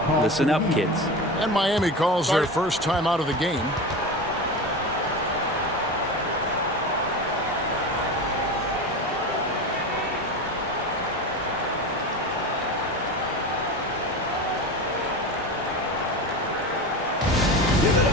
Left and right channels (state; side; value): normal; both; correlation 0.26